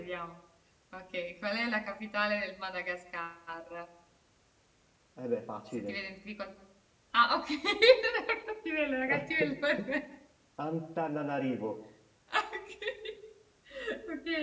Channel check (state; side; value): identical; both; correlation 1.00